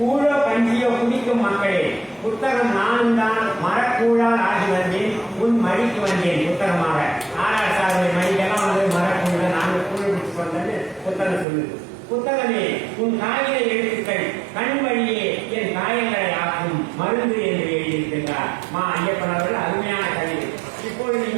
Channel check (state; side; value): drops out; left; at 11.5 s